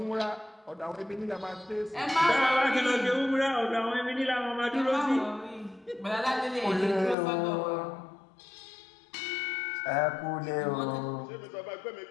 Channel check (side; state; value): right; drops out; at 7.2 s